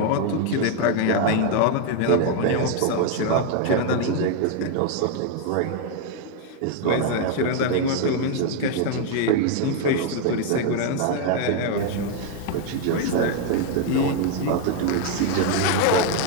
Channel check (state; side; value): different; both; correlation 0.01